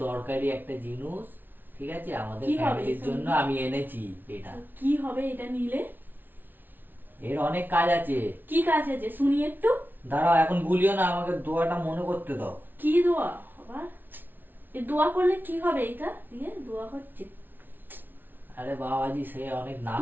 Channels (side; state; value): left; late; 0.091 ms